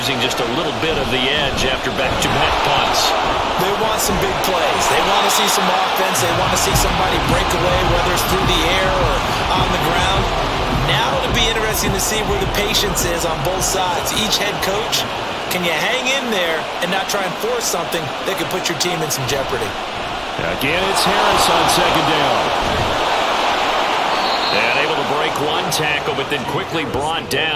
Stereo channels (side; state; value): both; identical; correlation 1.00